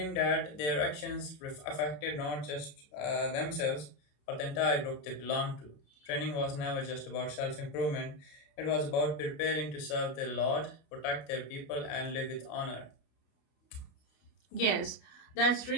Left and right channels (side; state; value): right; late; 28 ms